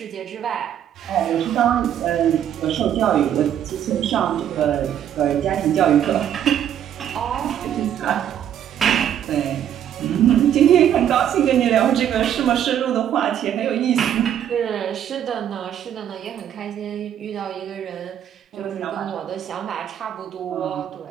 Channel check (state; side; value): quieter; left; 10.0 dB